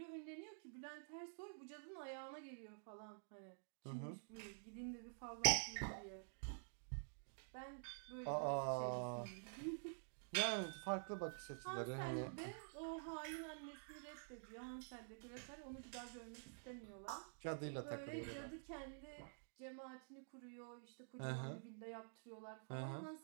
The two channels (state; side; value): silent; left; digital silence